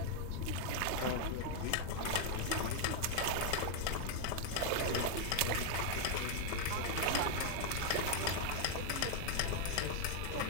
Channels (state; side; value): different; both; correlation 0.00